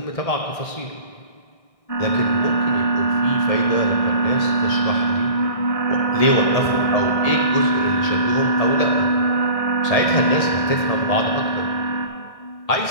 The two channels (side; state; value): right; late; 1.6 ms